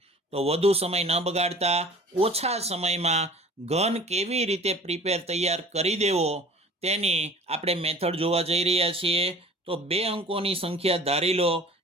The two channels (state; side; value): normal; both; correlation 0.45